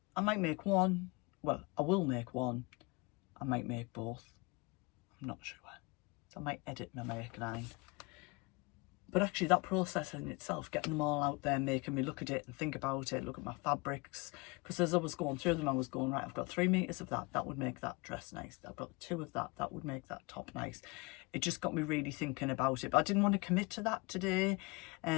I might make one. Well, I will make one. I might make both. I'm not sure. So I might edit my make9. But actually that process in itself, getting them all out there, making me look at it and think about it, look at my fabrics. Because as I was going through them, I was going, right, I've got 3 meters of that. That would make that dress nice. I've got 2 of that. That would make that top nice. It just got me really thinking about it. But I didn't want to commit to that today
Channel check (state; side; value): quieter; right; 26.6 dB